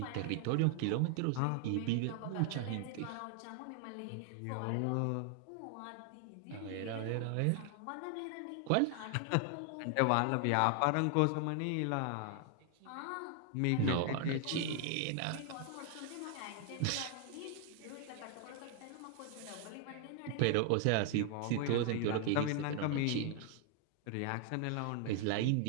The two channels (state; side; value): different; both; correlation 0.00